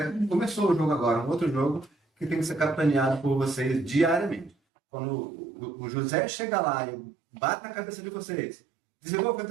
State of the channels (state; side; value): drops out; left; at 4.5 s